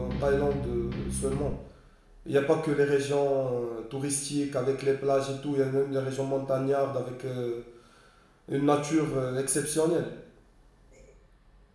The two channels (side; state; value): both; identical; correlation 1.00